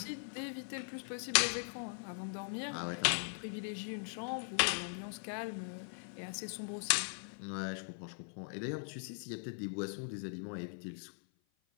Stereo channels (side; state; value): right; silent; 51 dB below the other